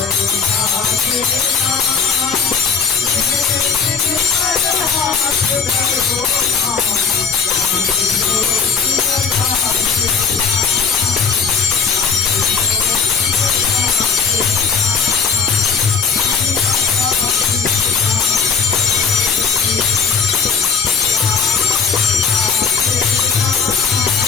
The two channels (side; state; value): right; quieter; 5.7 dB